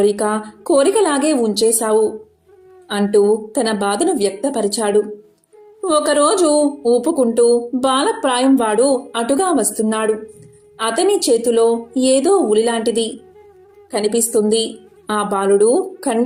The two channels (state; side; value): identical; both; correlation 1.00